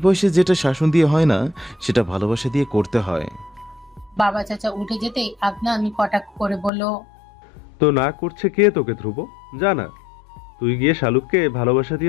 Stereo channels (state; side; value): drops out; right; at 6.7 s